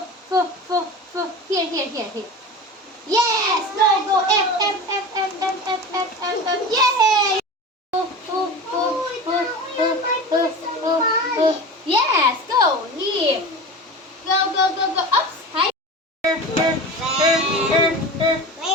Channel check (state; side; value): normal; both; correlation 0.31